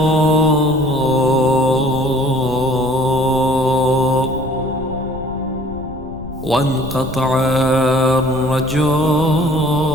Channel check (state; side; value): noise; left; rumble, 14 dB below the sound